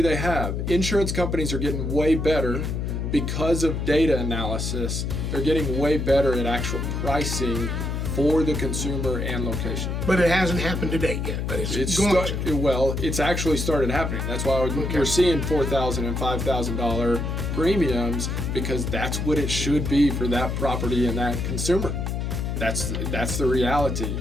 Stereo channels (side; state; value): left; noise; hum, 2 dB below the sound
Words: they have. Insurance companies are getting way better because of data analysis. They're getting way better at actual pricing for the consumer and location. But it hasn't happened to date yet. But it's actually started happening. That's why we're seeing $4,000 and $5,000 premiums, because that's what it should be for that property and that consumer. That's the reality.